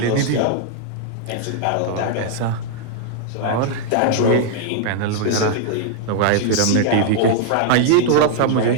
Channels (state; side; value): different; both; correlation -0.01